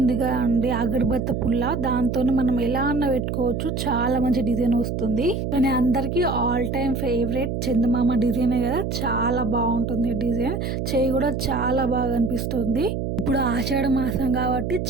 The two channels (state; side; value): noise; right; hum, 2 dB below the sound